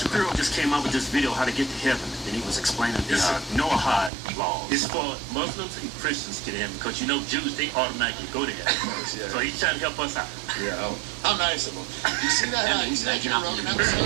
just came out with this video, How to Get to Heaven. And he was explaining the Noahide laws. It's for Muslims and Christians to get in because, Jews, they automatically go to heaven. Yeah. So he's trying to help us out. Yeah. How nice of him. You see that? You see that Joe Rogan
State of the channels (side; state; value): left; drops out; at 4.1 s